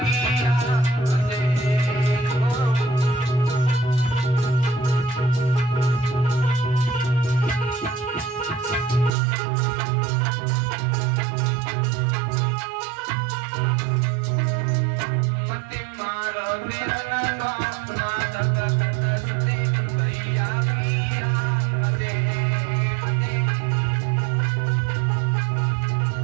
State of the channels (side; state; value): left; drops out; at 9.1 s